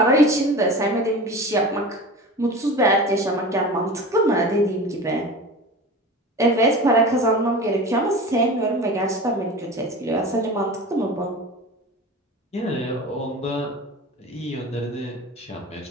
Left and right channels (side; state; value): both; normal; correlation 0.34